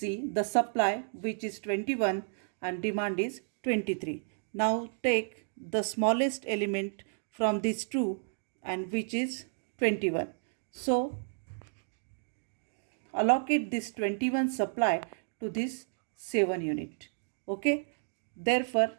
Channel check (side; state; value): left; silent; digital silence